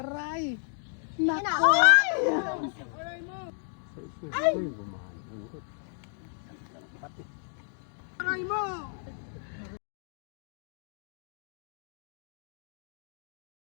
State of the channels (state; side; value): silent; right; digital silence